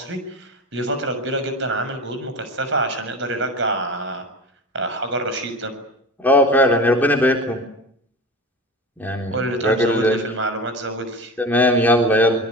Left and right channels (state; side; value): normal; both; correlation 0.30